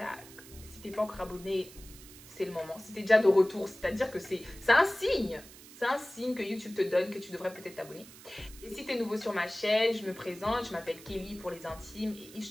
Si t'es pas encore abonné, c'est le moment. Si t'es déjà de retour, c'est-à-dire que c'est un signe. C'est un signe que YouTube te donne que tu devrais peut-être t'abonner. Et si tu es nouveau sur ma chaîne, je me présente, je m'appelle Kelly pour les intimes et It's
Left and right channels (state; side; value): noise; right; hiss, 19 dB below the sound